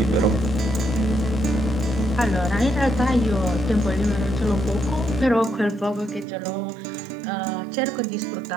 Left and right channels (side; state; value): left; drops out; at 6.2 s